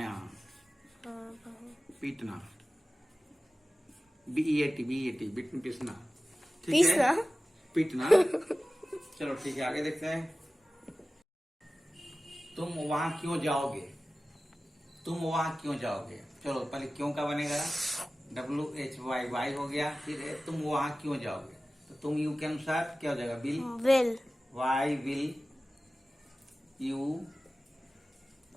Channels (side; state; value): both; normal; correlation 0.96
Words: हाँ, पीटना, BEAT, बीट में पीसना, ठीक पीसना? है, पीटना। चलो ठीक है, आगे देखते हैं। तुम वहां क्यों जाओगे, तुम वहां क्यों जाओगे। चलो पहले क्यों का बनेगा, WHY, वाई हो गया। फिर है तुम वहां क्यों जाओगे, तो तुम यू के अनुसार क्या हो जाएगा, will, why will you